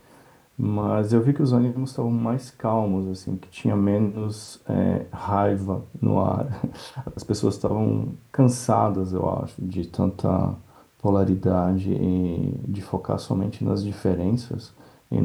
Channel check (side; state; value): both; identical; correlation 1.00